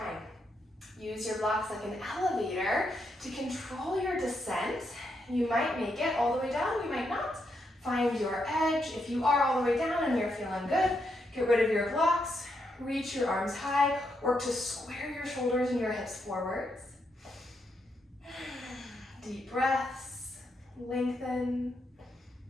Use your blocks like an elevator to control your descent. You might make it all the way down, you might not. Find your edge. If you are all the way down and you're feeling good, get rid of your blocks, reach your arms high, work to square your shoulders and your hips forwards. Deep breaths, lengthen.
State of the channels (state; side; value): normal; both; correlation 0.80